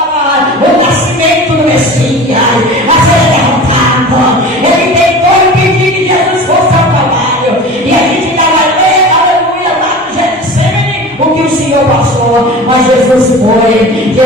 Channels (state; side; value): normal; both; correlation 0.36